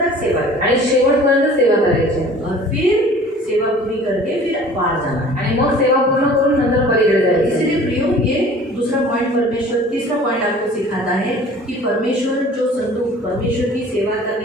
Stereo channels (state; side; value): normal; both; correlation 0.47